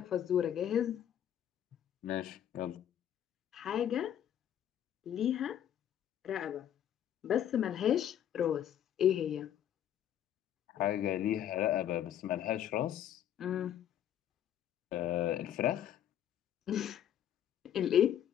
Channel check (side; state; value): right; quieter; 10.4 dB